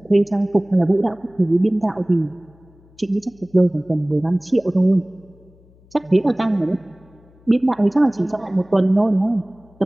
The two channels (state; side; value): noise; left; hum, 29 dB below the sound